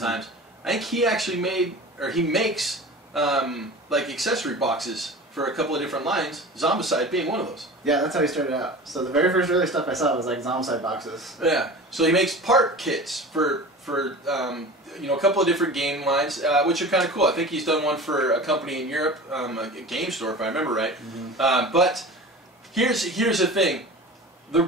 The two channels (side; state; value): both; normal; correlation 0.36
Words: I think he actually makes like accessory boxes for a couple of different lines, Zombicide being one of those. Yeah, that's how he started out. So the very first early stuff I saw was like Zombicide boxes. Yeah, so he makes part kits for you know, a couple of different game lines, which are kind of cool. I think he's done one for a company in Europe, a game store if I remember right. Mm-hmm. But here's the thing. The